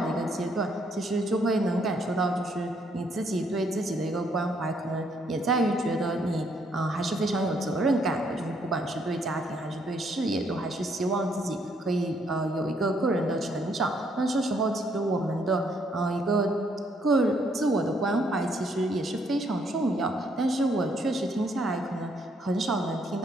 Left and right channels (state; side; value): normal; both; correlation 0.70